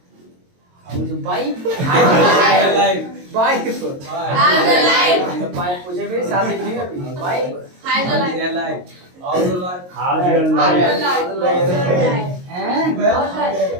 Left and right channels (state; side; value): late; left; 22 ms